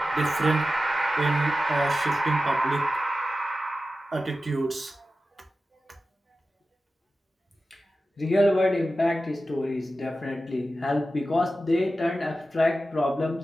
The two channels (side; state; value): both; normal; correlation 0.93